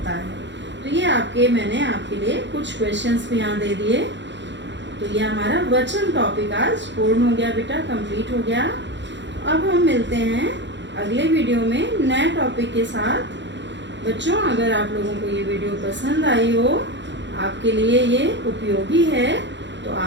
है। तो ये मैंने आपके लिए कुछ क्वेश्चंस भी यहाँ दे दिए। तो ये हमारा वचन टॉपिक आज पूर्ण हो गया बेटा, कंप्लीट हो गया। अब हम मिलते हैं अगले वीडियो में नए टॉपिक के साथ। बच्चों, अगर आप लोगों को ये वीडियो पसंद आई हो, आपके लिए ये उपयोगी है, तो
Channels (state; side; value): late; left; 0.52 ms